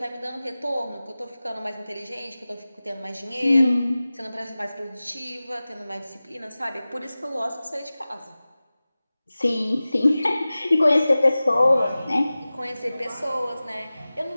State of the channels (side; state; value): both; inverted; correlation -0.97